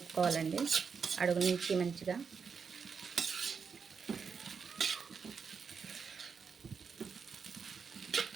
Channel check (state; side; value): quieter; left; 5.9 dB